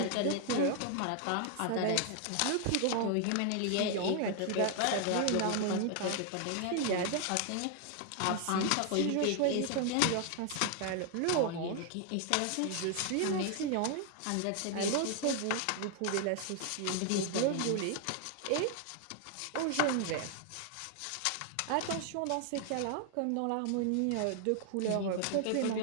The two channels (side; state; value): both; different; correlation 0.00